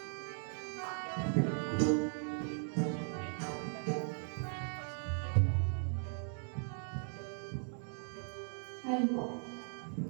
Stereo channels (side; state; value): left; silent; 52 dB below the other